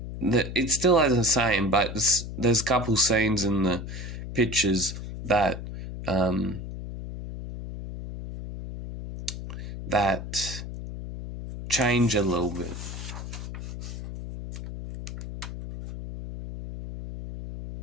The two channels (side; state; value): left; noise; hum, 8 dB below the sound